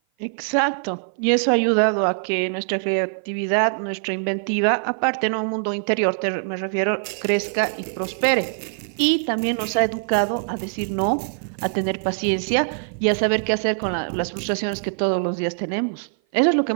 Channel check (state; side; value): silent; left; 56 dB below the other